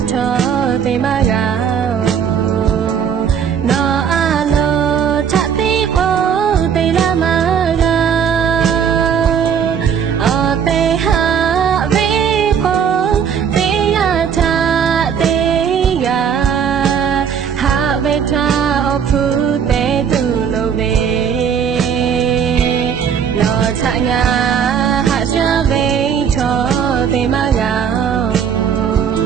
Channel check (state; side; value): quieter; left; 7.6 dB